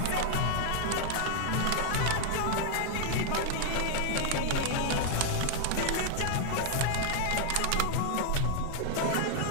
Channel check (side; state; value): both; different; correlation -0.01